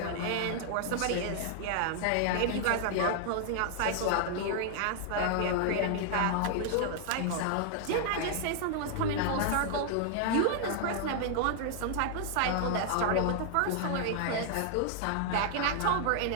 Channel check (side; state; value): both; different; correlation 0.00